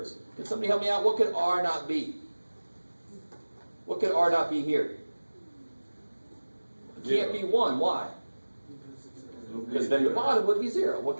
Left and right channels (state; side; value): inverted; both; correlation -1.00